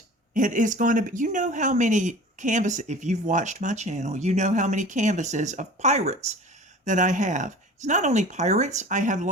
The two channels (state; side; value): normal; both; correlation 0.41